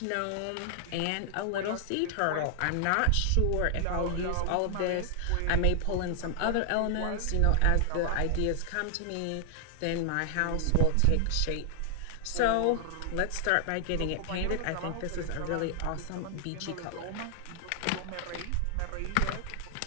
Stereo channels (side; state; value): both; different; correlation -0.01